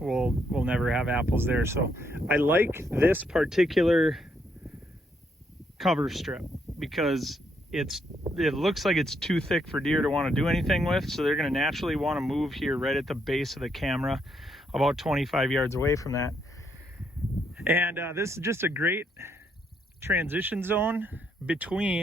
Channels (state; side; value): normal; both; correlation 0.75